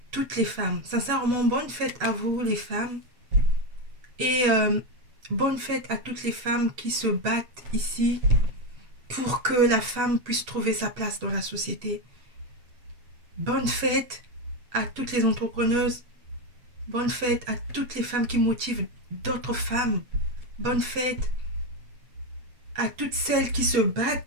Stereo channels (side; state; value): left; late; 8.2 ms